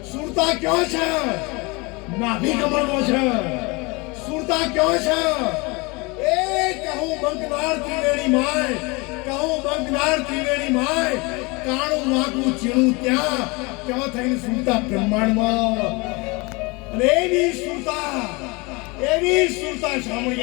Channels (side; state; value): right; quieter; 26.7 dB